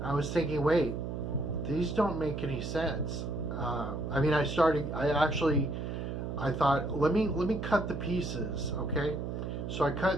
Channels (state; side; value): noise; right; hum, 4 dB below the sound